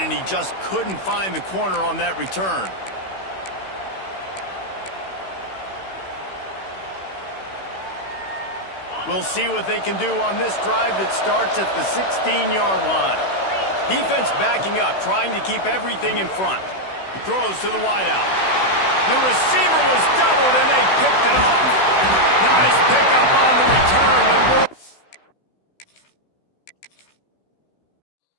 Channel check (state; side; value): late; right; 16 ms